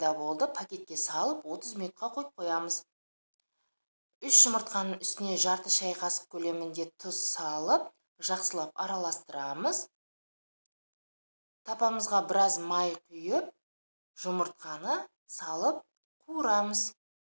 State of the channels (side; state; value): both; inverted; correlation -1.00